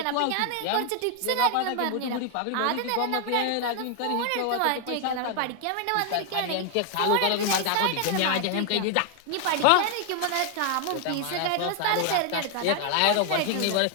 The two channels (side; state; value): both; different; correlation 0.00